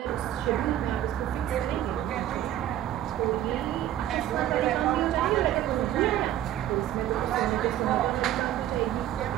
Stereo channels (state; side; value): quieter; left; 12.2 dB